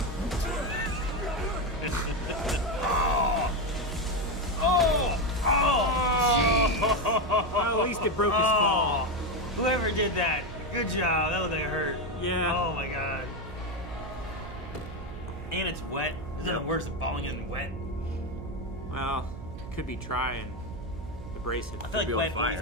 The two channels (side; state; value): right; noise; hum, 12 dB below the sound